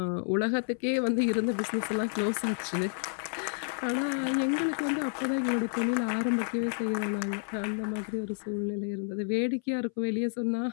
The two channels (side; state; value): right; silent; 58 dB below the other